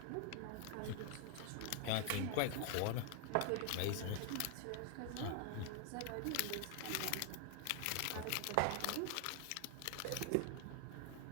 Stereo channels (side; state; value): both; different; correlation 0.00